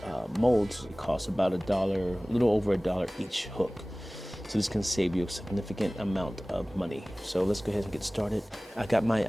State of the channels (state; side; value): normal; both; correlation 0.98